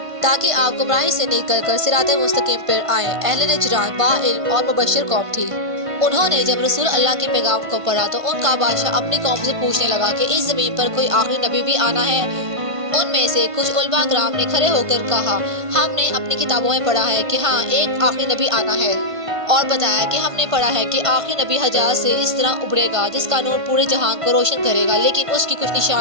ताकि आप गुमराही से निकल कर सिराते मुस्तकीम पर आए। अहले नजरान बाइल्म और मुबश्शिर कौम थी। उन्होंने जब रसूल अल्लाह के पैगाम को पढ़ा तो उनका बादशाह अपनी कौम से पूछने लगा कि इस जमीन पर कोई आखिरी नबी भी आना है। उनमें से कुछ उलमा कराम ने खड़े होकर कहा, हमने अपनी किताबों में पढ़ा है कि हाँ, एक आखिरी नबी आना है, और बताया कि हमने पढ़ा है कि आखिरी नबी हजाज से इस तरह उभरेगा जिसका नूर पूरे जहां को रोशन करेगा, लेकिन उसकी कुछ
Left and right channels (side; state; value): left; late; 1.5 ms